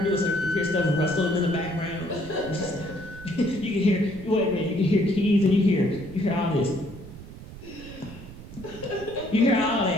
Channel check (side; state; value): right; noise; rumble, 15 dB below the sound